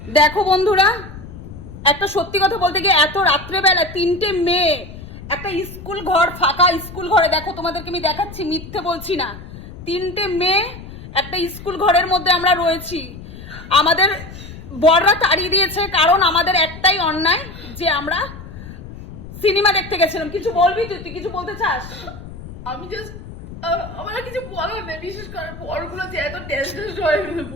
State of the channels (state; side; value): noise; left; rumble, 14 dB below the sound